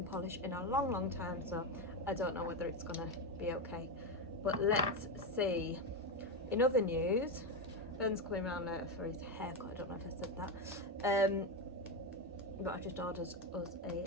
polish in a long time, so I don't know whether it's going to be okay. But let's see. In other news, Ben's coming around later for his haircut. I don't know if I said that. but I just ordered us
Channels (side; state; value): both; normal; correlation 0.11